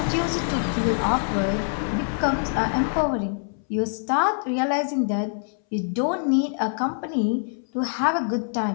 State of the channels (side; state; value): right; silent; 62 dB below the other